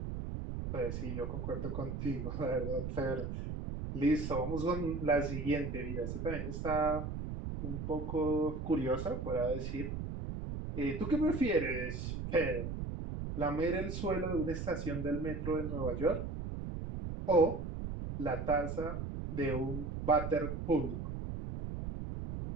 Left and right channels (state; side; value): noise; right; rumble, 5 dB below the sound